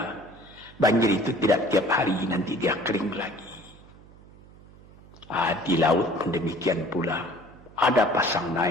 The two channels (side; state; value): right; noise; hum, 23 dB below the sound